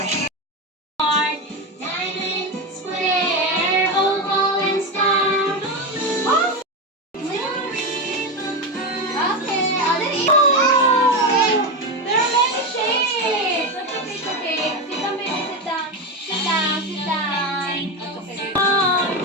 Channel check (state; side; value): normal; both; correlation 0.14